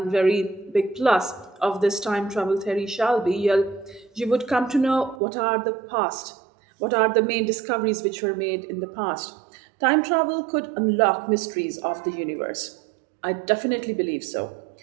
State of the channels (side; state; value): left; drops out; at 5.2 s